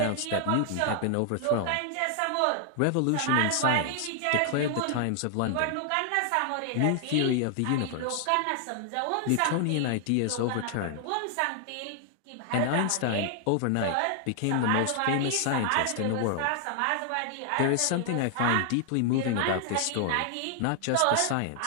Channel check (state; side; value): different; both; correlation 0.00